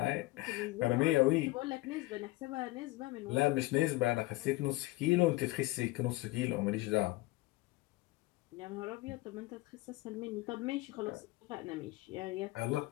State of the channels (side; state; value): right; quieter; 20.0 dB